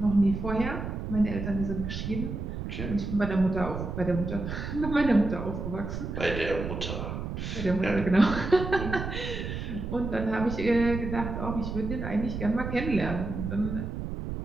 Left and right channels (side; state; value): right; noise; rumble, 5 dB below the sound